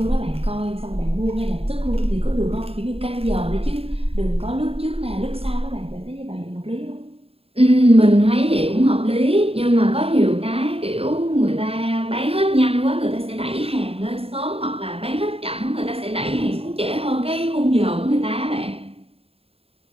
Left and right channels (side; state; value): left; late; 0.28 ms